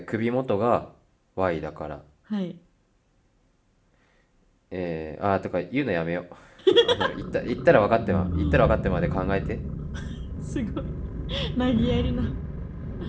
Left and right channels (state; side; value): identical; both; correlation 1.00